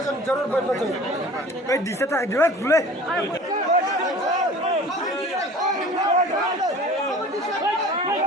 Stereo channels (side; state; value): both; normal; correlation 0.43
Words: जरूर बैठना चाहिए दिसत आहे दिवस खुले